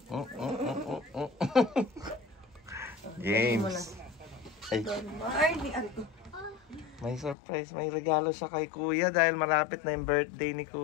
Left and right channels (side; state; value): right; drops out; at 7.4 s